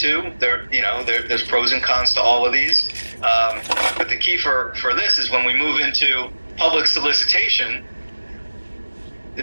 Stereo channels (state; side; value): inverted; both; correlation -1.00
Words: There's pros and cons to all of these. But the key for this is when we move into public solicitation, the